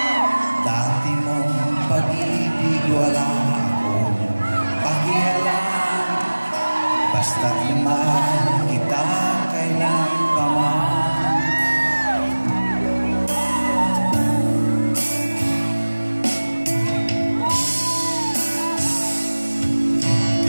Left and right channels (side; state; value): both; inverted; correlation -1.00